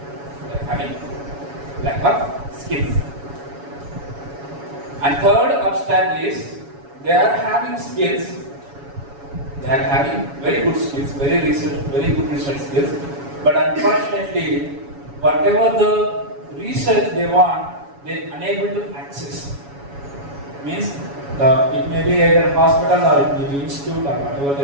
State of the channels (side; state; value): left; late; 7.1 ms